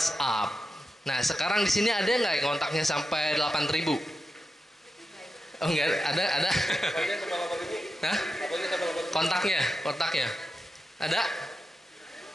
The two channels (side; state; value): both; normal; correlation 0.90